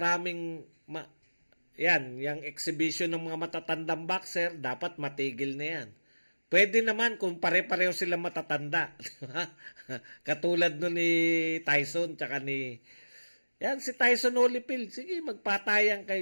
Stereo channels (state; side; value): inverted; both; correlation -1.00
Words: Yan, yung exhibition ng mga matatandang boxer, dapat matigil na yan. Pwede naman kung pare-pareho sila matatanda. Katulad nun ni Tyson, tsaka ni... Yan, si Tyson Holyfield. Sige, magpatayan